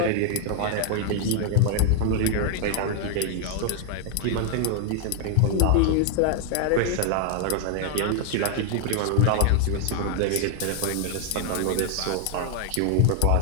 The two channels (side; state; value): both; different; correlation 0.00